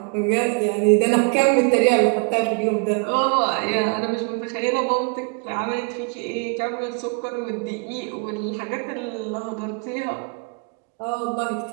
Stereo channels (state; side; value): quieter; left; 36.1 dB